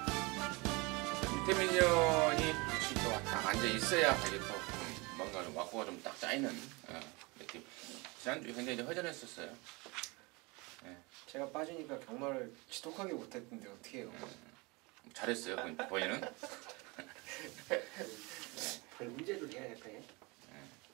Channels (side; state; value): left; quieter; 26.5 dB